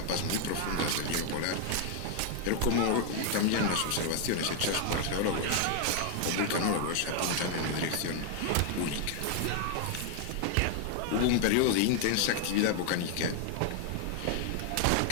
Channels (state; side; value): different; both; correlation 0.00